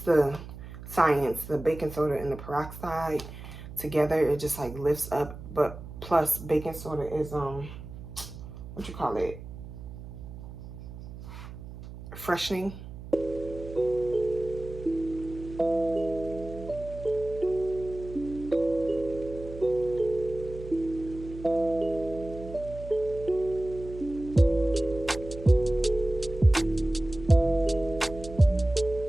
the science, the baking soda and the peroxide together, it just like lifts up. But plus baking soda is what you call it, freshening.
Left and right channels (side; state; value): right; noise; hum, 13 dB below the sound